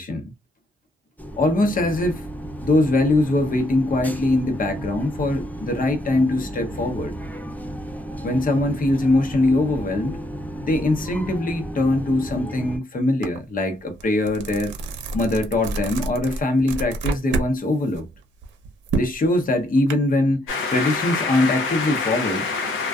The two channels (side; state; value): both; normal; correlation 0.72